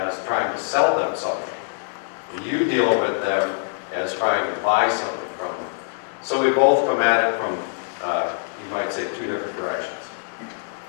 trying to sell them something. You deal with them as trying to buy something from them. So we both come at it from, you might say, two different directions.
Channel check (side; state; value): right; silent; digital silence